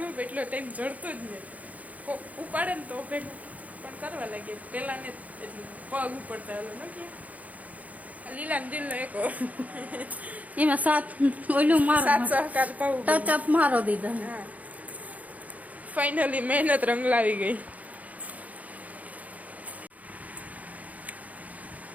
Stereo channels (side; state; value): left; late; 0.073 ms